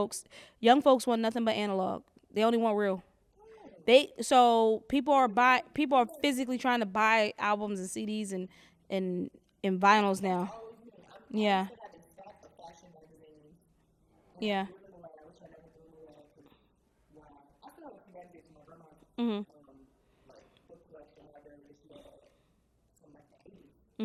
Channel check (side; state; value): both; identical; correlation 1.00